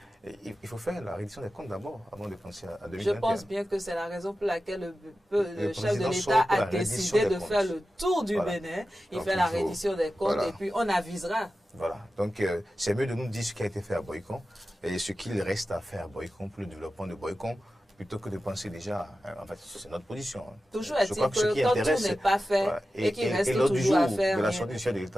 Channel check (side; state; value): both; normal; correlation 0.93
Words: Il faut faire la réédition des comptes d'abord, avant de penser à 2021. Je pense bien que c'est la raison pour laquelle le chef de l'État a décidé de faire le tour du Bénin. Il fait la reddition des comptes et puis on avisera. Voilà. Donc, c'est mieux de nous dire ce qui a été fait à Boyko et ce qu'il reste à faire à Boyko pour le développement de Boyko, plutôt que de penser déjà, en fait, c'est notre position. Toujours est-il que quand tout n'est pas fait et qu'il reste toujours à faire. De la sortie du chef de